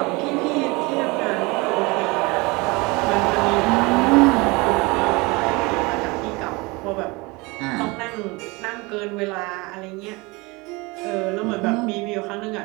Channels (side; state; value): left; quieter; 25.3 dB